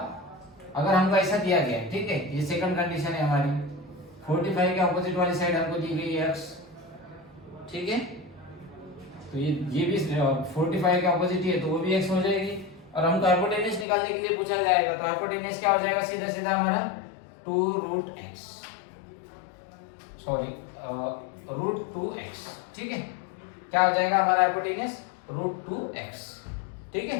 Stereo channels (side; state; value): right; drops out; at 13.9 s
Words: अगर हमको ऐसा दिया गया, ठीक है, ये सेकंड कंडीशन है हमारी, 45 के ऑपोजिट वाली साइड हमको दी गई है x, ठीक है, तो ये भी 45 के ऑपोजिट ही है, तो वो भी x हो जाएगी। और हमको हाइपोटेनियस निकालने के लिए पूछा जाएगा, तो हाइपोटेनियस क्या हो जाएगा, सीधा सीधा हमारा 2√x, सॉरी √2x, ठीक है, क्या हो जाएगा हमारा हाइपोटेनियस √2x, ठीक है।